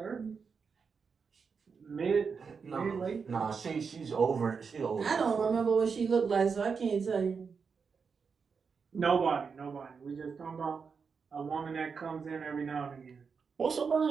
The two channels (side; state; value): left; quieter; 5.6 dB